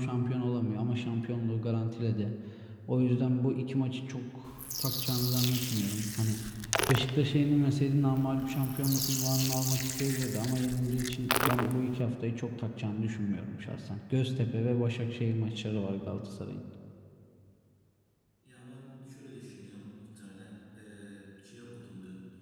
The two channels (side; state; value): both; identical; correlation 1.00